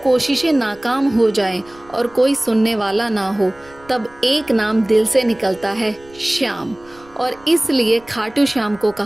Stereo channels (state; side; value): noise; right; rumble, 26 dB below the sound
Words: कोशिशें नाकाम हो जाएं और कोई सुनने वाला ना हो, तब एक नाम दिल से निकलता है, श्याम। और इसलिए खाटू श्याम को